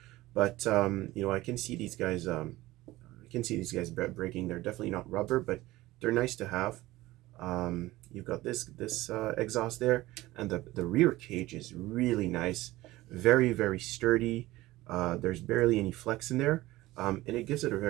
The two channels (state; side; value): quieter; left; 18.0 dB